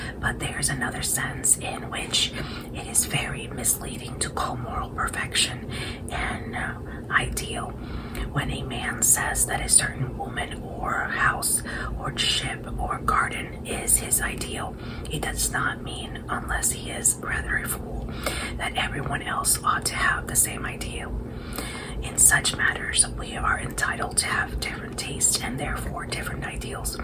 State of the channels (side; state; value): both; identical; correlation 1.00